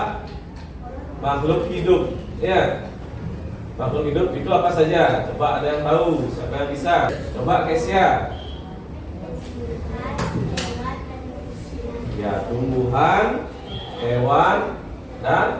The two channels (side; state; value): both; identical; correlation 1.00